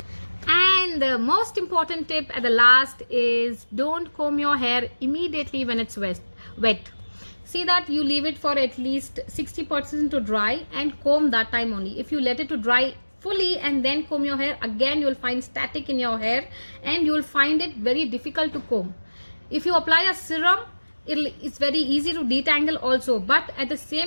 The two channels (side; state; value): both; inverted; correlation -1.00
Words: And the most important tip at the last is, don't comb your hair immediately when it's wet. See that you leave it for at least 60% to dry and comb that time only. If you let it to dry fully and then comb your hair, again you will find static in your hair and you will find it very difficult to comb. If you apply a serum, it's very easy to detangle also, but at the